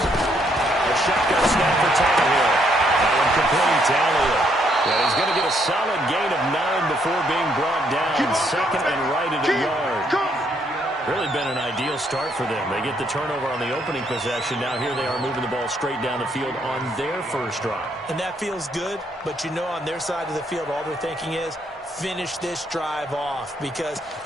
A shotgun snap for Tannehill. That one complete to Elliott. Yeah, he's going to get a solid gain of 9 before being brought down. 2nd and right at a yard. Really been an ideal start for them. They get the turnover on the opening possession. Now here they are moving the ball straight down the field on their first drive. And that feels good, but you know on their side of the field, all they're thinking is, finish this drive off because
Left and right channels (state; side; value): normal; both; correlation 0.72